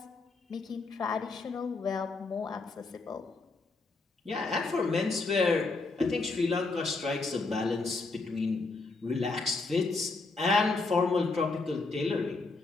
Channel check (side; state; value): right; quieter; 3.7 dB